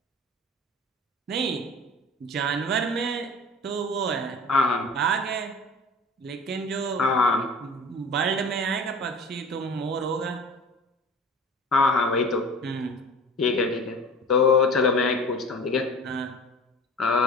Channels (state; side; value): normal; both; correlation 0.40